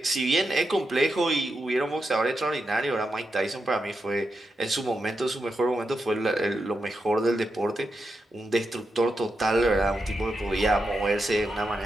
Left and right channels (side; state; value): both; normal; correlation 0.87